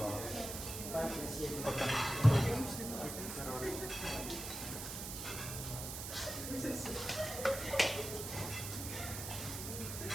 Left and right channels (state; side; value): noise; right; hiss, 6 dB below the sound